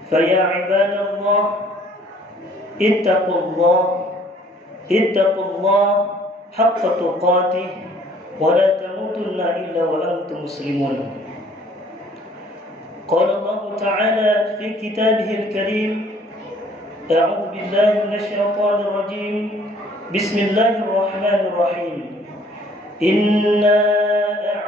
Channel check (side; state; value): both; normal; correlation 0.57